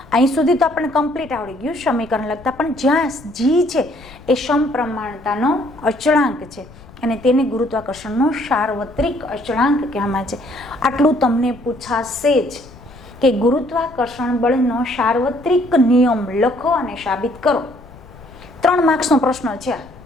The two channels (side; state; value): left; noise; rumble, 21 dB below the sound